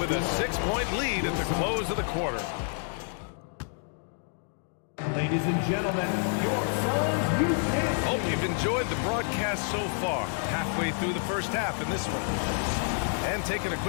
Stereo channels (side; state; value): right; silent; 57 dB below the other